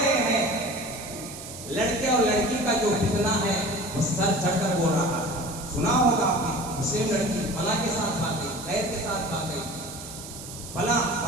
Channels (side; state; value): right; noise; hiss, 12 dB below the sound